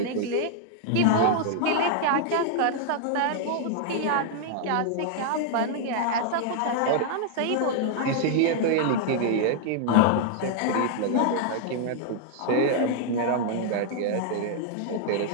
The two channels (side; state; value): both; different; correlation -0.01